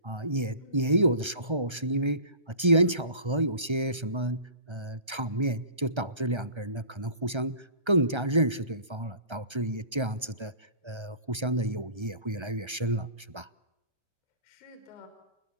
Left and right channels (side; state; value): left; late; 1.3 ms